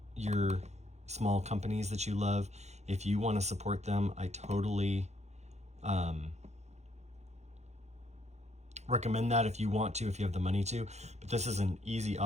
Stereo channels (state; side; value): late; left; 0.32 ms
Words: your small companies that you love. If you want to support them, I totally recommend that if you want to, if you have the money to. But this is an easy